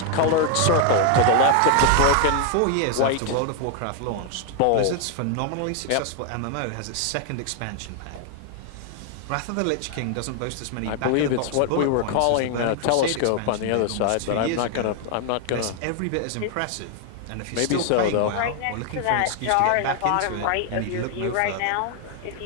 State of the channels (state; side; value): different; both; correlation 0.00